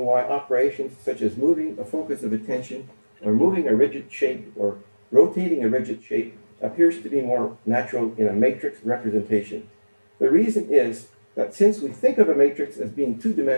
why operations such as moving a focus of attention, or moving a rigid shape, or rotating a rigid shape appears to be more natural in a matrix representation. The reason is that since we think of a matrix as being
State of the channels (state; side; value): inverted; both; correlation -1.00